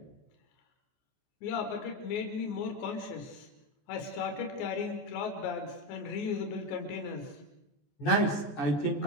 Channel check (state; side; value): late; right; 14 ms